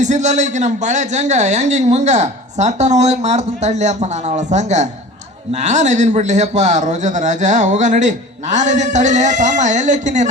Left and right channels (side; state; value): both; normal; correlation 0.39